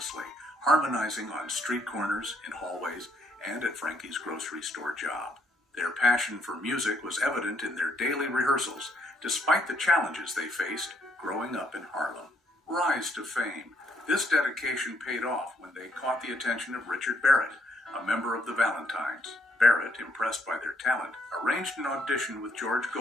harmonizing on street corners, in hallways, and at Frankie's grocery store job. Their passion for music was evident in their daily rehearsals, despite the challenges they faced growing up in Harlem. Rise to fame. This dedication paid off when they caught the attention of Richard Barrett, a member of the Valentines. Barrett, impressed by their talent, arranged an audition with George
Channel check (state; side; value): normal; both; correlation 0.71